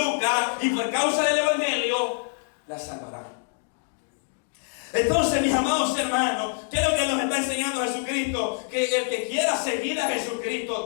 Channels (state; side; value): silent; right; 61 dB below the other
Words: y por causa del evangelio, la salvará. Entonces, mis amados hermanos, ¿qué es lo que nos está enseñando Jesucristo? Que el que quiera seguir a